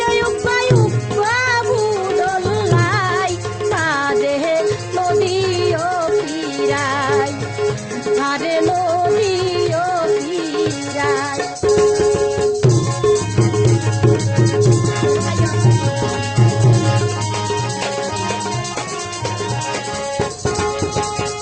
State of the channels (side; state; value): both; identical; correlation 1.00